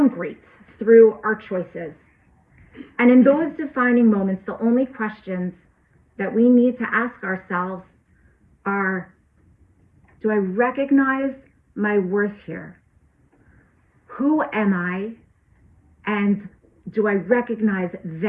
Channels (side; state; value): both; identical; correlation 1.00